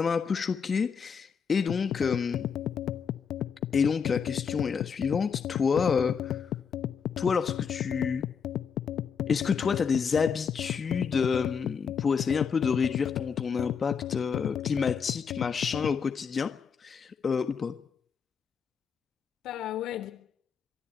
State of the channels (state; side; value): quieter; right; 6.5 dB